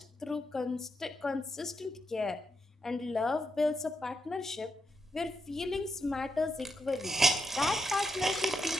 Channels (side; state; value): both; normal; correlation 0.83